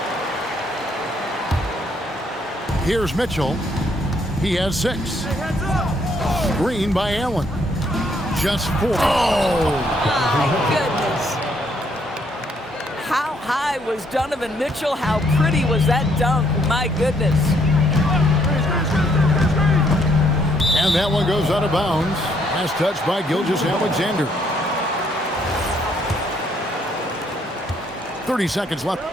Here's Mitchell. He has 6. Screen by Allen. Just 4. Oh! My goodness. How high was Donovan Mitchell? How pretty was that dunk? My goodness. And that one goes out of bounds. Last touch by Gilgeous-Alexander. 30 seconds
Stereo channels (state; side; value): normal; both; correlation 0.69